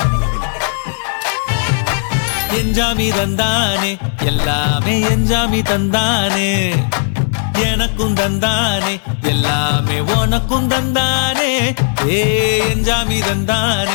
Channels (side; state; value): right; silent; digital silence